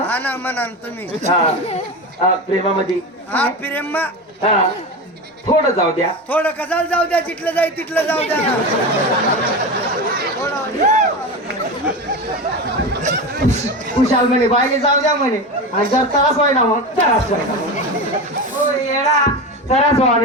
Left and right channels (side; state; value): both; normal; correlation 0.23